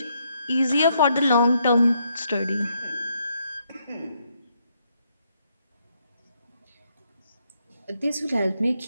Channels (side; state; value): both; inverted; correlation -0.75